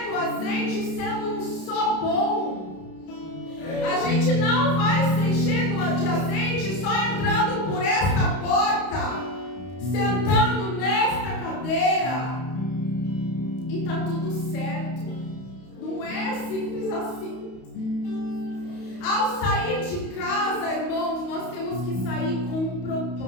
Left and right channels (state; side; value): late; right; 32 ms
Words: do azeite sendo só bom. A gente não vai se encher de azeite só entrando por esta porta, sentando nesta cadeira e tá tudo certo. Não é simples assim. Ao sair de casa, irmãos, nós temos que sair com um